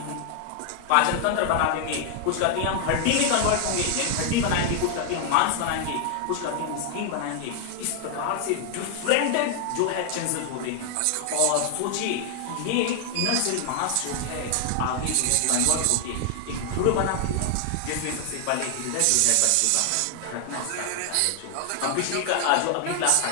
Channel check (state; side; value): different; both; correlation 0.00